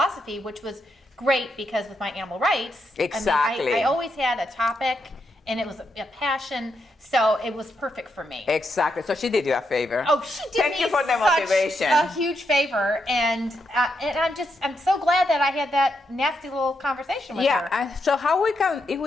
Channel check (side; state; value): both; normal; correlation 0.81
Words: which was great, because with my animal rights, exactly. I always had a topic, and it was a passion, so it was perfect for me. Exactly. So she did you a favor. Oh, she did Thank me you for the motivation. A huge favor, and I'm so glad that I had that nasty little conversation with her. Yeah. So how if